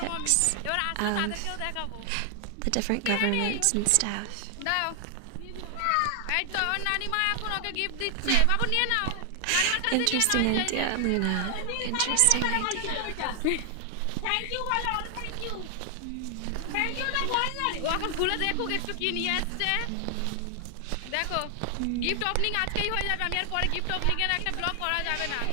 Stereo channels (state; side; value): different; both; correlation 0.00